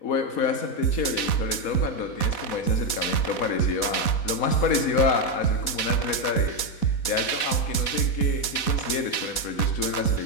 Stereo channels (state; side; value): late; right; 4.1 ms